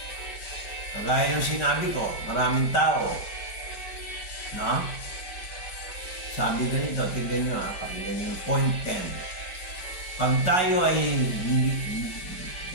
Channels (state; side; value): late; right; 4.4 ms